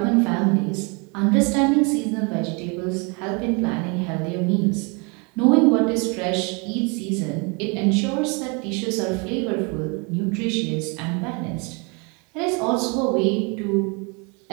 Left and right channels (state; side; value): quieter; left; 32.0 dB